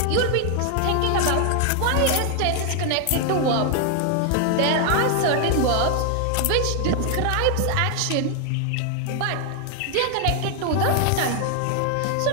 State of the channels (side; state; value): both; different; correlation 0.00